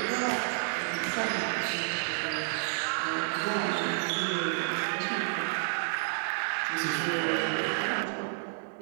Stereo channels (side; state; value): left; silent; digital silence